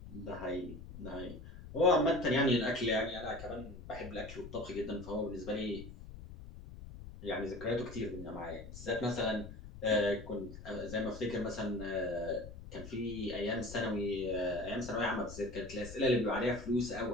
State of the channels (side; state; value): left; noise; rumble, 13 dB below the sound